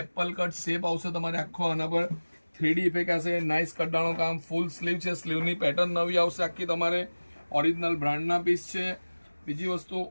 એપલ કટ શેપ આવશે તમારે આખો. આના પર 3D ઇફેક્ટ હશે. નાઇસ કટડાનું કામ, ફૂલ સ્લીવ છે. સ્લીવની પેટર્ન નવી આવશે આખી તમારે. ઓરિજિનલ બ્રાન્ડના પીસ છે. બીજી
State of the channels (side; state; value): both; inverted; correlation -1.00